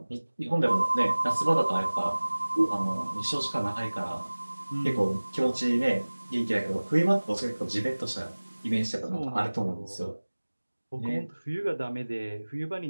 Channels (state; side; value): inverted; both; correlation -1.00